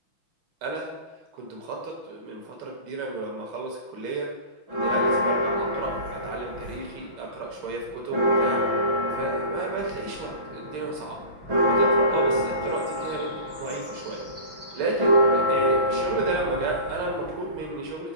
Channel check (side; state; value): left; late; 6.0 ms